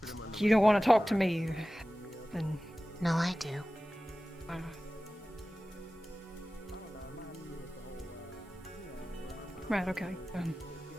you don't want to talk to me, then... No, I do. Right, okay.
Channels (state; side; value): normal; both; correlation 0.96